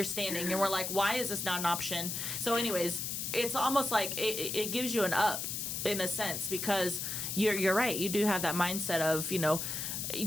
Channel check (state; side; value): noise; left; hiss, 3 dB below the sound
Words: and we're like, why is this not an option? So anyways, it's almost like it gives you an up in a sense, because you're right. You do have that mindset of,